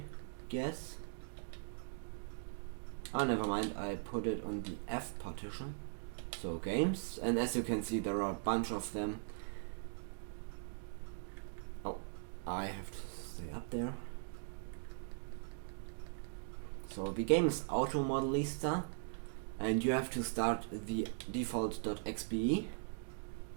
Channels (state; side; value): silent; left; digital silence